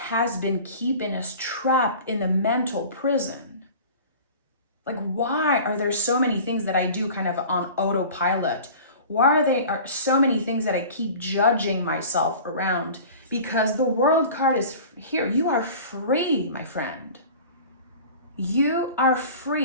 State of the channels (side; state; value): both; inverted; correlation -0.40